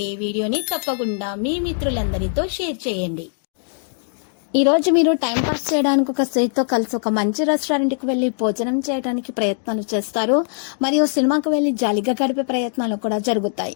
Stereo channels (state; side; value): silent; right; digital silence